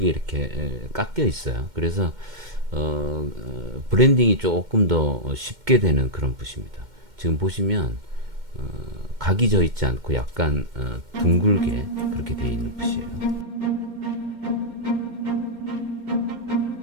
이렇게 깎여 있어요. 그래서 브랜딩이 조금 더 쉽게 되는 그런 붓입니다. 지금 보시면 각이 져 있지 않고 약간 둥글게 그렇게 되어 있는 붓이에요.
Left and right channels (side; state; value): left; late; 2.1 ms